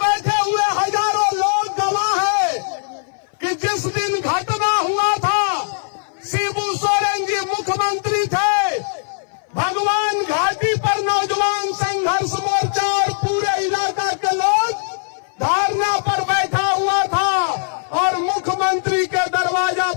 हुए हजारों लोग गवाह है कि जिस दिन घटना हुआ था शिबू सोरेन जी मुख्यमंत्री थे। भगवान घाटी पर नौजवान संघर्ष मोर्चा और पूरे इलाका के लोग धरना पर बैठा हुआ था, और मुख्यमंत्री के दरवाजा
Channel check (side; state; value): right; silent; 60 dB below the other